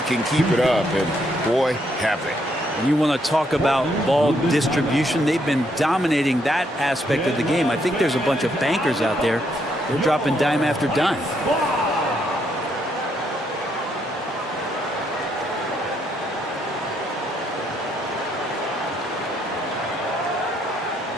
can keep it up, and boy, have they. And you want to talk about ball distribution. They've been dominating that aspect of the game. I think there's a bunch of bankers out there. They're dropping dime after dime.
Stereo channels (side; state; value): both; normal; correlation 0.74